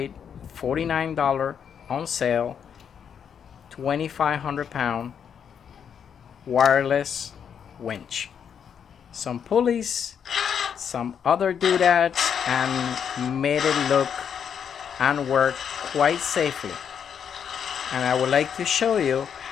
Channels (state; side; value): quieter; right; 7.7 dB